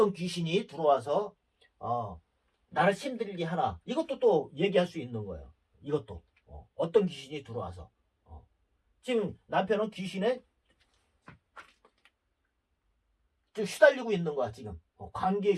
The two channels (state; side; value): identical; both; correlation 1.00